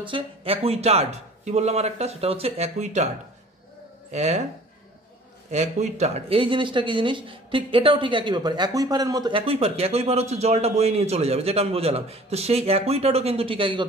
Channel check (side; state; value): both; normal; correlation 0.48